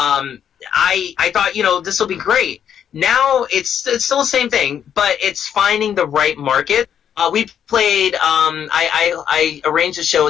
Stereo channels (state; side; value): quieter; right; 8.9 dB